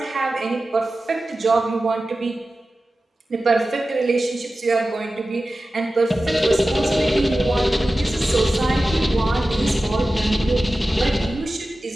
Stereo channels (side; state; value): both; normal; correlation 0.95